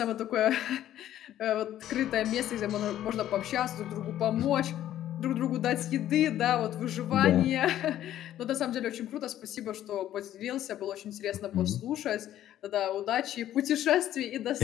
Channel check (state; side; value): quieter; right; 12.2 dB